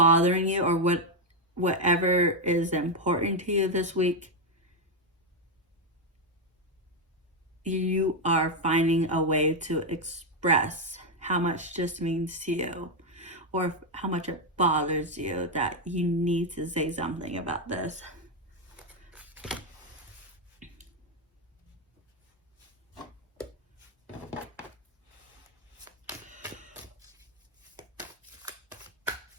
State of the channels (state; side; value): normal; both; correlation 0.03